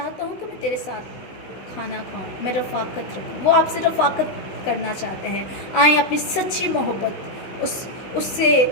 हूँ कि मैं तेरे साथ खाना खाऊं, मैं रफ़ाकत रखूं। वो आपसे रफ़ाकत करना चाहते हैं। आए अपनी सच्ची मोहब्बत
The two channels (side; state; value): right; late; 16 ms